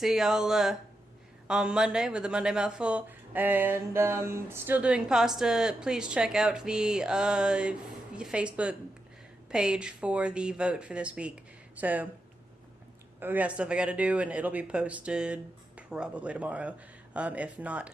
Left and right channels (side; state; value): both; normal; correlation 0.87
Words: y'all on Monday with the Monday Mouthful. And still doing pasta. Please check out the Facebook page for the vote for this week. So we got stuff I got to do, and it'll be posted probably tomorrow, if not